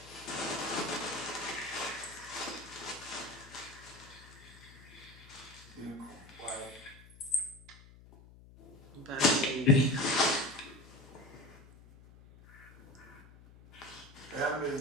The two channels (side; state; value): left; noise; hum, 21 dB below the sound